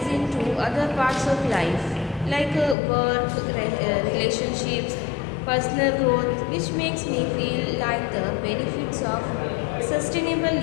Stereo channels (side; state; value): right; drops out; at 2.8 s